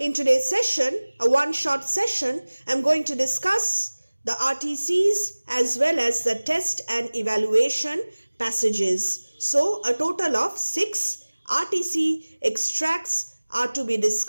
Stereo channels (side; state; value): both; inverted; correlation -1.00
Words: today's session, a one-shot session, I'm going to discuss the RTCs as well as the test and evaluation passages. So a total of 6 RTC extracts are to be